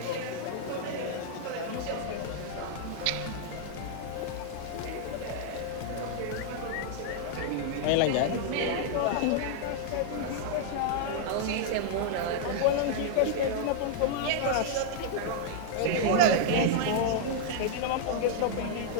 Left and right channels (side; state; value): both; different; correlation -0.01